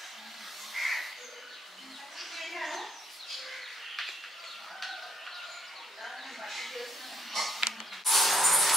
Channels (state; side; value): normal; both; correlation 0.66